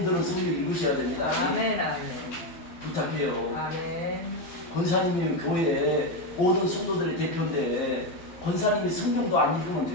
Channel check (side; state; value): right; late; 12 ms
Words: 성경 읽으셔야 됩니다. 아멘. 아멘. 부탁해요. 아멘. 권사님이 교회에 모든 성도들의 대표인데 권사님이 성경도 안 읽으면